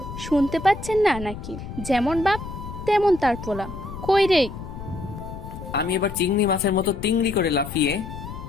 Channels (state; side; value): noise; left; rumble, 10 dB below the sound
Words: শুনতে পাচ্ছেন না নাকি? যেমন বাপ তেমন তার পোলা। কই রে? আমি এবার চিংড়ি মাছের মতো তিংড়ি করে লাফিয়ে